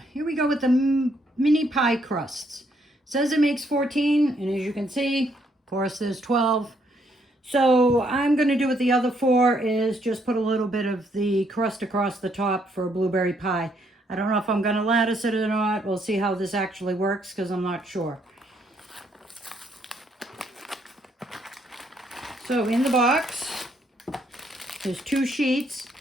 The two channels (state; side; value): normal; both; correlation 0.71